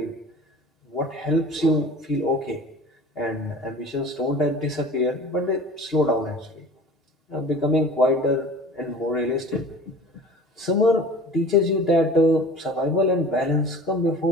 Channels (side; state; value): both; normal; correlation 0.41